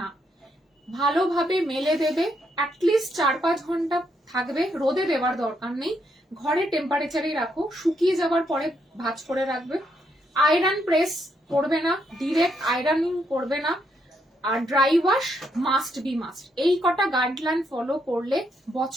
ভালোভাবে মেলে দেবে। অ্যাটলিস্ট 4-5 ঘন্টা থাকবে, রোদে দেওয়ার দরকার নেই, ঘরে টেম্পারেচারেই রাখো, শুকিয়ে যাওয়ার পরে ভাঁজ করে রাখবে। আয়রন প্রেস করবে না, ডিরেক্ট আয়রনিং করবে না, আর dry wash must be must. এই কটা গাইডলাইন ফলো করলে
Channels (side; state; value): both; normal; correlation 0.77